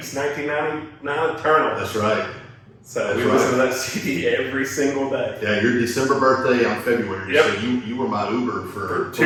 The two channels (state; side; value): identical; both; correlation 1.00